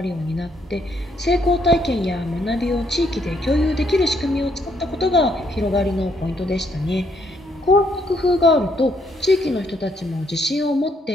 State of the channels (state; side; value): normal; both; correlation 0.71